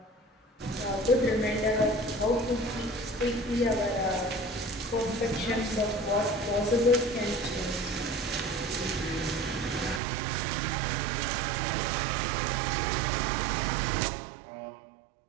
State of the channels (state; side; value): drops out; left; at 10.0 s